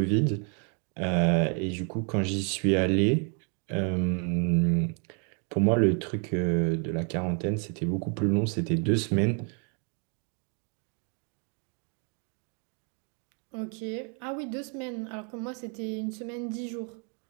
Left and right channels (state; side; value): quieter; left; 39.1 dB